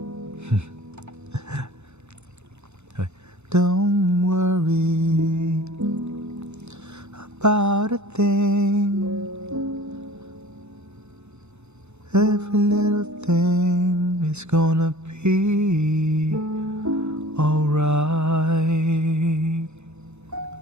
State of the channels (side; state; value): left; late; 0.82 ms